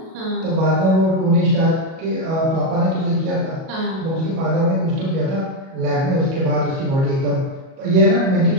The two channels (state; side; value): late; left; 37 ms